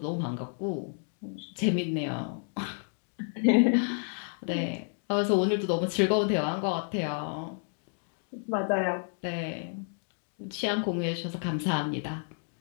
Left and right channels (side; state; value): right; silent; 55 dB below the other